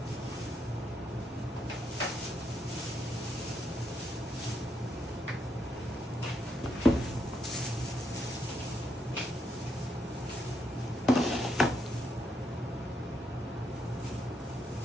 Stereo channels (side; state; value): both; normal; correlation 0.78